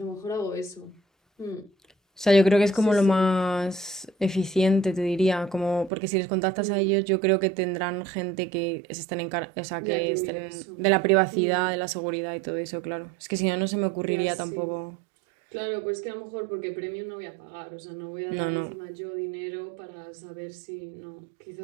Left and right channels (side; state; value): left; drops out; at 5.9 s